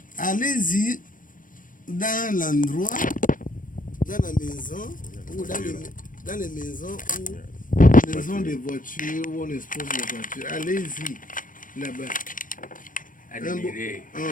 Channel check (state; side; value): late; right; 0.39 ms